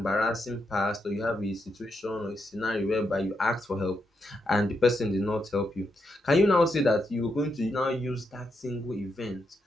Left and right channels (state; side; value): normal; both; correlation 0.82